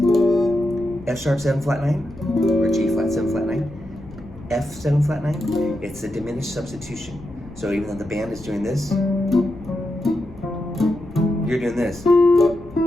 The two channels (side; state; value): left; noise; rumble, 18 dB below the sound